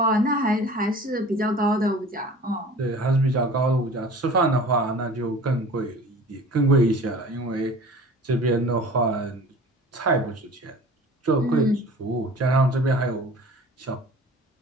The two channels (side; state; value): both; normal; correlation 0.43